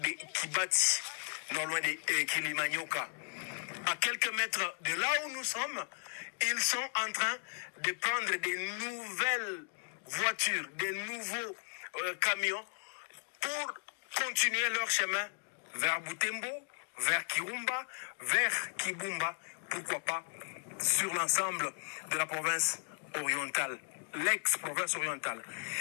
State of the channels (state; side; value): silent; right; digital silence